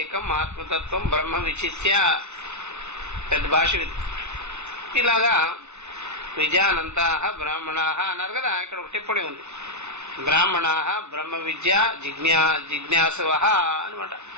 ఆత్మతత్వం బ్రహ్మ విచిత్య. పెద్ద భాష ఇది. ఇలాగా విజానంత బ్రాహ్మణ అన్నారు కదా. ఇక్కడ ఒక టిప్పణి ఉంది. బ్రాహ్మణ బ్రహ్మ విద్య జిజ్ఞాసవ అనమాట.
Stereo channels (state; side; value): late; left; 0.82 ms